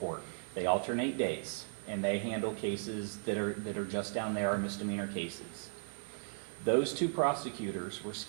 They alternate days, and they handle cases that are just down there, are misdemeanor cases. Those two prosecutors were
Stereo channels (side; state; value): left; silent; 54 dB below the other